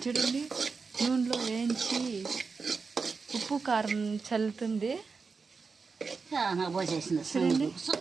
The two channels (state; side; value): quieter; left; 4.8 dB